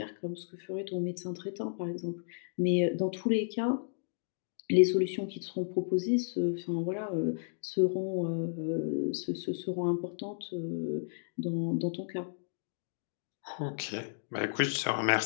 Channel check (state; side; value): silent; right; digital silence